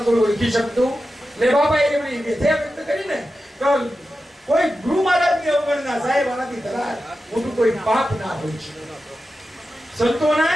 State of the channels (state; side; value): normal; both; correlation 0.92